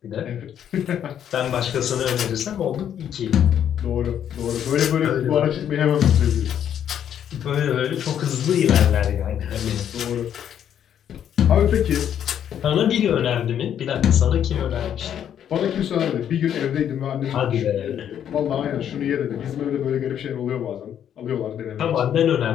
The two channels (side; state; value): right; quieter; 9.6 dB